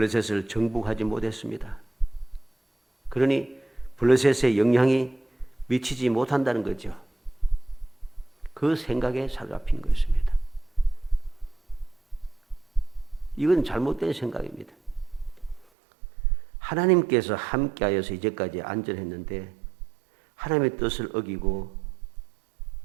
정복하지 못했습니다. 그러니 블레셋의 영향이 미치지 못한다는 거죠. 그 생각에 사로잡힌 것입니다. 이건 잘못된 생각입니다. 하나님께서 함께하여서 이제까지 안전했는데 하나님의 뜻을 어기고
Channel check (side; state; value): left; drops out; at 15.7 s